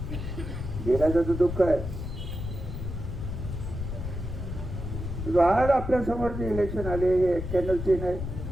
गेल्याचं दुःख आहे. आज आपल्या समोर जे इलेक्शन आले हे 91ची नाही,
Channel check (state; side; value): noise; left; rumble, 6 dB below the sound